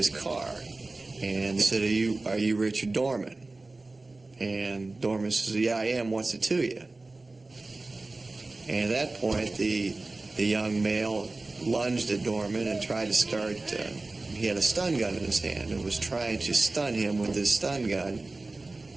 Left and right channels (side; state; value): left; quieter; 3.3 dB